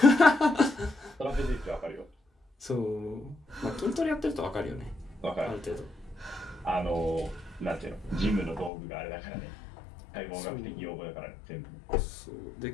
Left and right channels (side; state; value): right; drops out; at 8.7 s